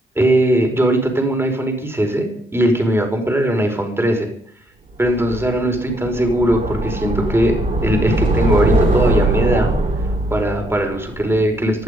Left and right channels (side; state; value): both; normal; correlation 0.72